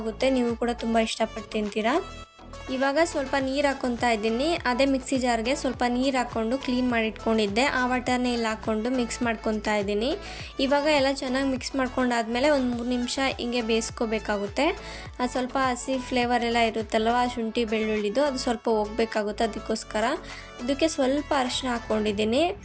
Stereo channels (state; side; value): identical; both; correlation 1.00